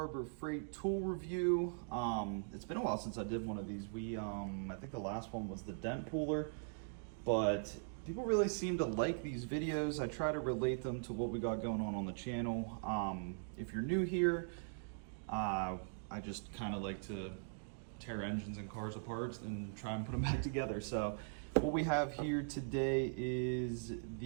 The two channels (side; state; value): left; silent; digital silence